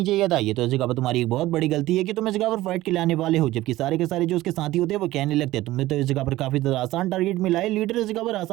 चाहिए था। ये तो इस जगह पर तुम्हारी एक बहुत बड़ी गलती है कि तुम इस जगह पर फाइट के लिए आने वाले हो। जबकि सारे के सारे जो उसके साथी होते हैं वो कहने लगते हैं तुमने तो इस जगह पर काफी ज्यादा आसान टारगेट मिला है, लीडर इस जगह पर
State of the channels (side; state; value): left; quieter; 16.6 dB